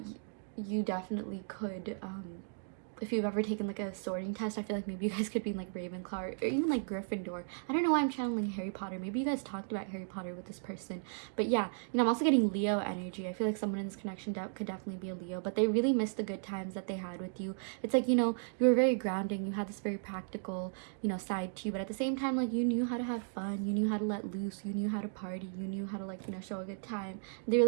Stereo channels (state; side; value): silent; left; digital silence